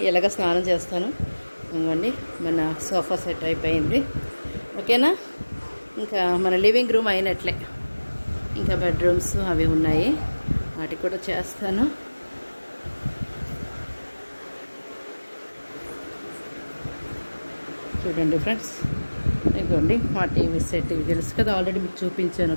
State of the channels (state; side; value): inverted; both; correlation -1.00